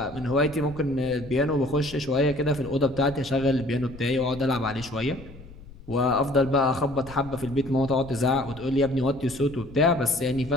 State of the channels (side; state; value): left; noise; rumble, 17 dB below the sound